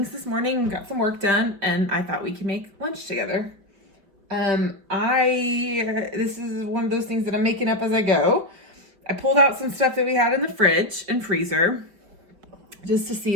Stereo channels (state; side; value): late; left; 5.1 ms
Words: this morning, got some work done, and I thought we could make lunch together. This is one of those things that I'm making up as I go. I pulled out some stuff that we had in the fridge and freezer just to see,